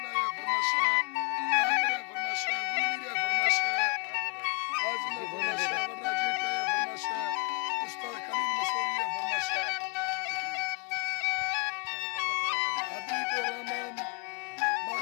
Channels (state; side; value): quieter; right; 34.1 dB